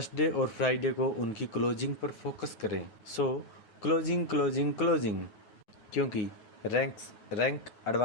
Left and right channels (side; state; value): right; late; 9.4 ms